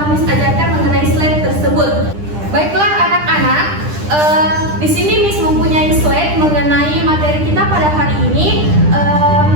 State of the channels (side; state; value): left; late; 10 ms